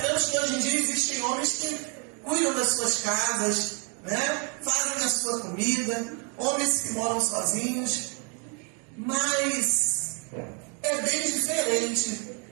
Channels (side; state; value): left; quieter; 37.0 dB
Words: que hoje em dia existem homens que cuidam das suas casas, fazem a sua comida, homens que moram sozinhos, mas é bem diferente